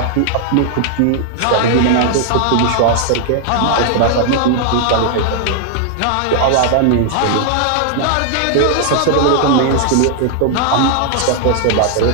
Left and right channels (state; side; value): different; both; correlation 0.00